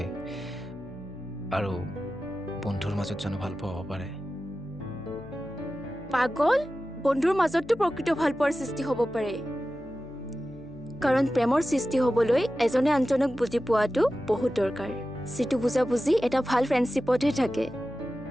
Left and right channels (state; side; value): noise; left; hum, 21 dB below the sound